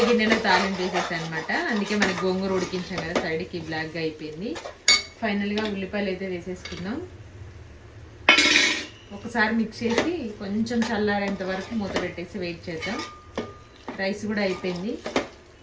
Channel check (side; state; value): both; identical; correlation 1.00